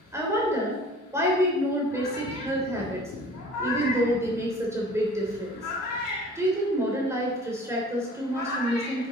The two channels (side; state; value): both; normal; correlation 0.46